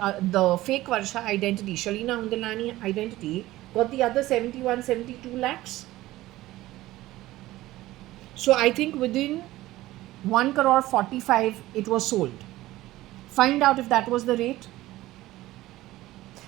the fake Varsha identity, Shalina Hundalani identity, got the other 72 lakhs. So I think within 1 crore 45 it was sold. Find out if that was the rate.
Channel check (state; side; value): quieter; left; 16.8 dB